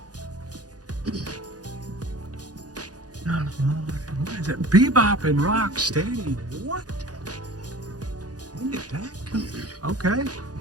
What is that? Bebop and Rock Steady. What? When did that come? Okay.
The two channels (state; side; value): late; left; 0.68 ms